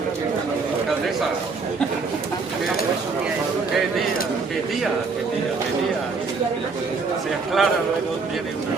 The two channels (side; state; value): left; quieter; 4.6 dB